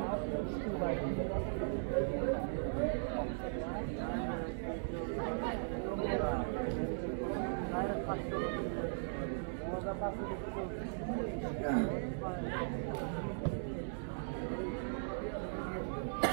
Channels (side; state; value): left; silent; digital silence